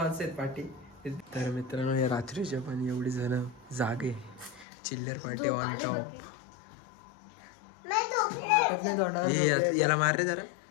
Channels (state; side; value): drops out; right; at 4.7 s